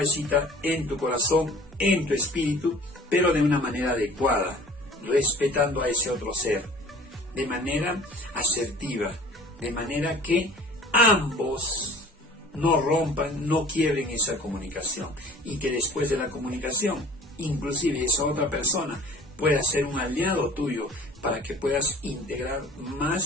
en tu corazón, en tu espíritu, pero de una manera adecuada, respetando a ese otro ser, de manera asertiva, de manera que ambos no rompan, no quiebren esa comunicación, y que después de la comunicación, inclusive esa otra persona pueda ser un aliado tuyo para que puedas integrar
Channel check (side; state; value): both; normal; correlation 0.46